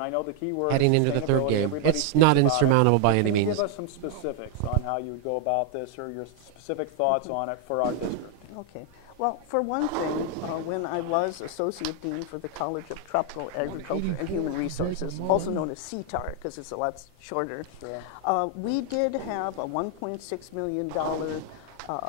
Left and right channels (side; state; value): both; different; correlation 0.00